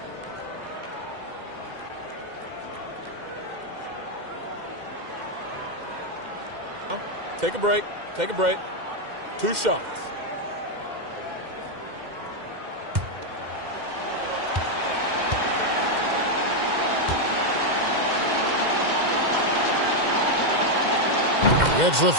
Take a break. Take a break. 2 shots. Gets the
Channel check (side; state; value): left; late; 2.1 ms